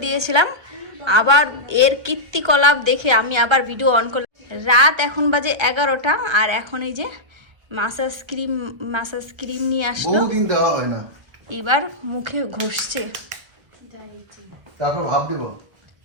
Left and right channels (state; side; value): late; left; 1.3 ms